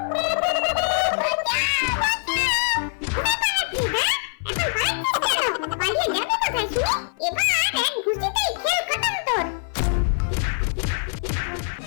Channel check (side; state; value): right; silent; 59 dB below the other